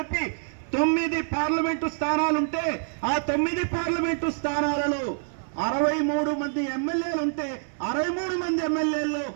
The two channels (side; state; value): left; silent; 61 dB below the other